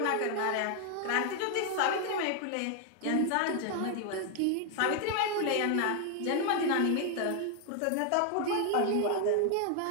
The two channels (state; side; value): different; both; correlation 0.00